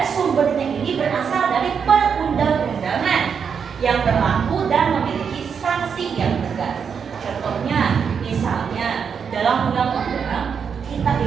sumbernya ini berasal dari perundang-undangan yang berlaku dan memiliki sanksi yang tegas. Contohnya, misalnya dalam undang-undang kita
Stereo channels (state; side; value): quieter; left; 6.7 dB